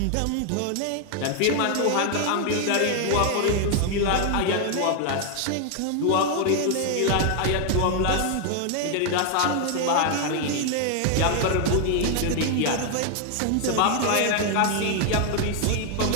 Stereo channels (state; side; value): different; both; correlation 0.00